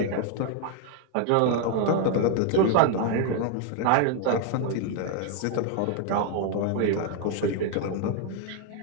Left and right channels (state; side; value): different; both; correlation 0.00